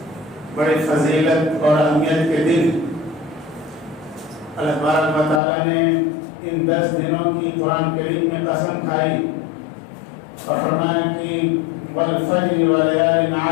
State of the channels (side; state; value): right; drops out; at 5.4 s